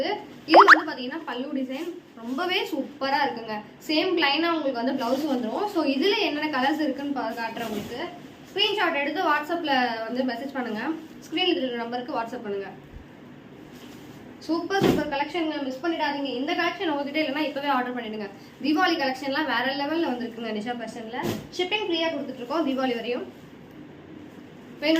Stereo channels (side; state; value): both; identical; correlation 1.00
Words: இது வந்து பாத்தீங்கன்னா பல்லு டிசைன் ரொம்பவே சூப்பரா இருக்குங்க. சேம் பிளைனா உங்களுக்கு வந்து பிளவுஸ் வந்துடும். ஸோ இதுல என்னென்ன கலர்ஸ் இருக்குன்னு காட்டுறேன் உங்களுக்கு. ஸ்கிரீன்ஷாட் எடுத்து வாட்ஸ்அப்ல வந்து மெசேஜ் பண்ணுங்க. ஸ்கிரீன்ல இருக்கிற நம்பருக்கு வாட்ஸ்அப் பண்ணுங்க. சூப்பர் கலெக்ஷன், மிஸ் பண்ணிடாதீங்க. இந்த கலெக்ஷன் உங்ககிட்ட இல்லைன்னா இப்பவே ஆர்டர் பண்ணிடுங்க. தீபாவளி கலெக்ஷன்லாம் வேற லெவல்ல வந்திருக்குங்க. நிஷா ஃபேஷன்ல ஷிப்பிங் ஃப்ரீயா கொடுத்துட்டு இருக்கோம் தீபாவளி வரையும்.